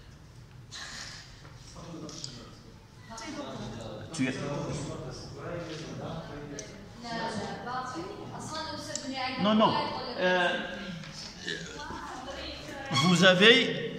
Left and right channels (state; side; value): identical; both; correlation 1.00